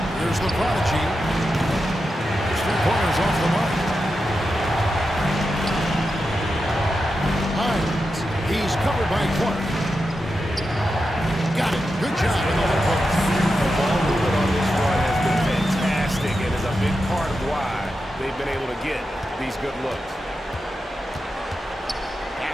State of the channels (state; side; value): normal; both; correlation 0.89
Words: Here's the prodigy. His 3-pointers off the mark. Hines. He's covered by Clark. Got it. Good job in the hole post. The ball movement on this run has been fantastic and is a big part of why they've been able to get these good looks.